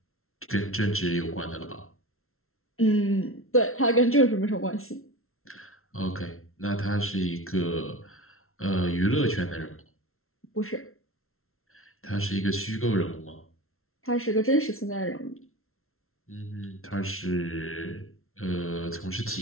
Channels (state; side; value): late; right; 0.62 ms